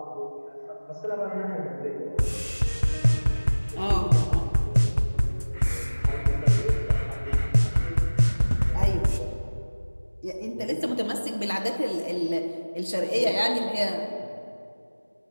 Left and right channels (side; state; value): both; inverted; correlation -1.00